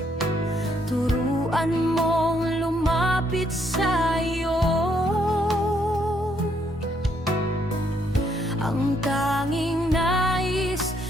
turuan mong lumapit sa'yo. Ang tanging nais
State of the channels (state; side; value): normal; both; correlation 0.72